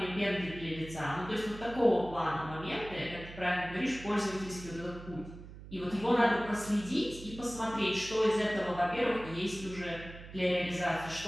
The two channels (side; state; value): right; noise; hum, 14 dB below the sound